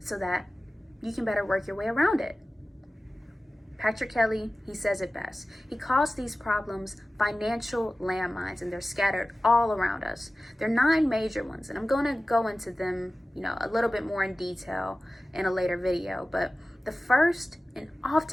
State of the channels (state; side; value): normal; both; correlation 0.96